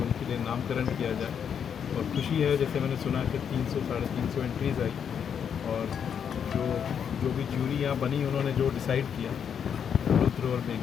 उनके लिए नामकरण किया जाए। और खुशी है, जैसे मैंने सुना कि 300-350 एंट्रीज़ आई, और जो भी ज्यूरी यहाँ बनी उन्होंने जो डिसाइड किया रुद्र और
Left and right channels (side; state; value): right; quieter; 7.7 dB